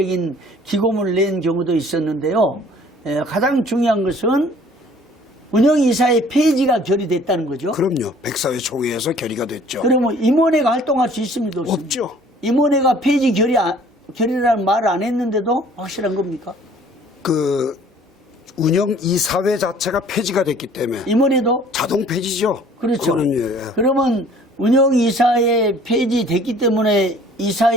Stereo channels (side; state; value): both; normal; correlation 0.54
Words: 기고문을 낸 경우도 있었는데요. 가장 중요한 것은 운영이사의 폐지가 결의됐다는 거죠. 그럼요. 백사회 총회에서 결의가 됐죠. 그러면 임원회가 활동할 수 있습니까? 없죠. 임원회가 폐지 결의라는 말을 안 했는데도 확실한 겁니까? 그 운영이사회 자체가 폐지가 됐기 때문에 임원회도? 자동 폐지죠. 그렇죠. 그거는 그러면 운영이사회 폐지됐기 때문에